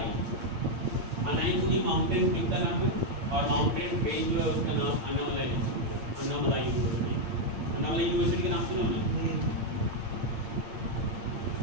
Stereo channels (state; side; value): late; left; 8.7 ms